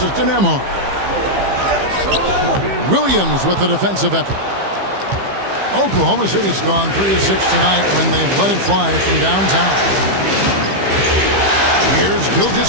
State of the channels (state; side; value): late; left; 15 ms